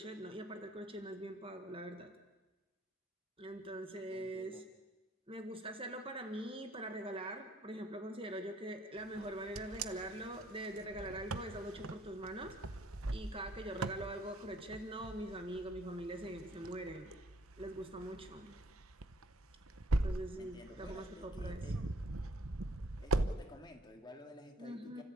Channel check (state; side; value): normal; both; correlation 0.61